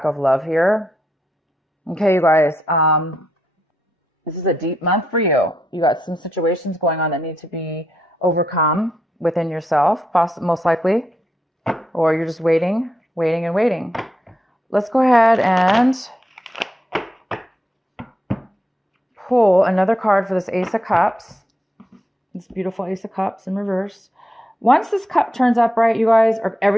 of love here. Okay, you guys, this is a deep month for you. You got some situations going on that need to be overcome within yourself, most likely. Or you're just waiting. Let's go ahead and pull another card for this Ace of Cups. This beautiful Ace of Cups in reverse. Once this cup turns upright, you guys,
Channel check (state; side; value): normal; both; correlation 0.81